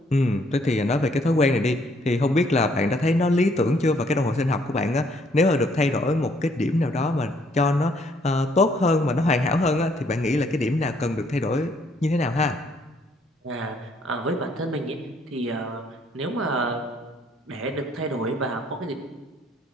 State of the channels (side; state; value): both; normal; correlation 0.66